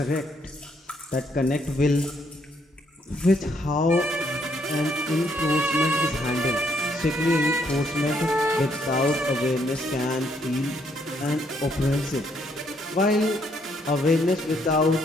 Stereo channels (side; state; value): both; normal; correlation 0.71